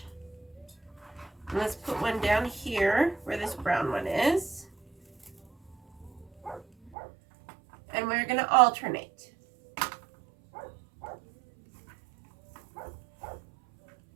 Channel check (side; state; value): left; drops out; at 6.9 s